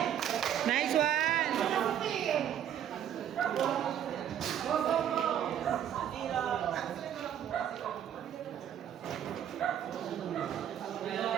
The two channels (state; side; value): quieter; left; 9.9 dB